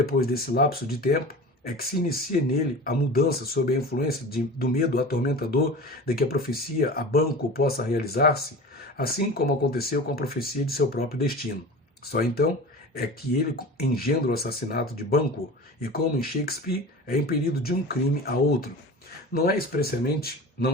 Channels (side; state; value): both; normal; correlation 0.35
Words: desse lapso de tempo é que se inicia nele a mudança sob a influência do medo atormentador de que a profecia a Banquo possa realizar-se, assim como aconteceu com a profecia de seu próprio destino. Só então é que ele engendra o assassinato de Banquo, e como em Shakespeare, é impelido de um crime a outro. Não é expressamente